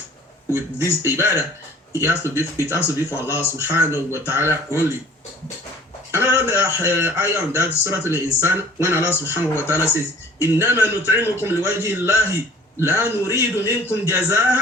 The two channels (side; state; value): both; normal; correlation 0.50